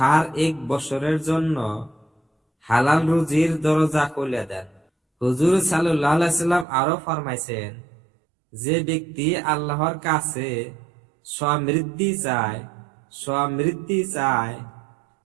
জন্য হালাল রুজির দরজা খুলে দেন। হুজুর সাল্লাল্লাহু আলাইহি সাল্লাম আরো ফরমাইছেন, যে ব্যক্তি আল্লাহর কাছে সমৃদ্ধি চায়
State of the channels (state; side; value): drops out; left; at 6.7 s